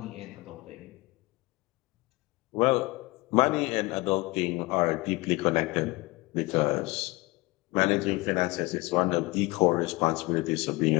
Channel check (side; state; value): right; quieter; 23.0 dB